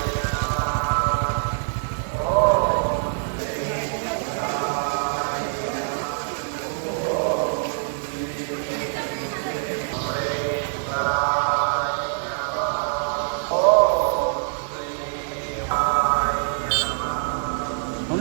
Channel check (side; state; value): left; silent; 62 dB below the other